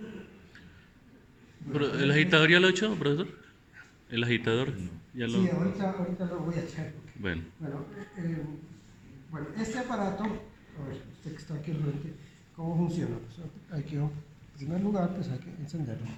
temperatura. ¿El agitador ya lo he hecho, profesor? ¿El agitador? Ya lo... Sí, ahorita lo voy a echar. Bueno. Bueno, este aparato, a ver, usted que está aquí al frente, ¿cómo funciona? Pues hay que, en primer lugar, pues hay que encenderlo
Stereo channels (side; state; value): both; identical; correlation 1.00